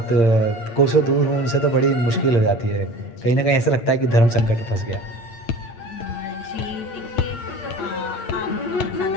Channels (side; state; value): right; late; 8.7 ms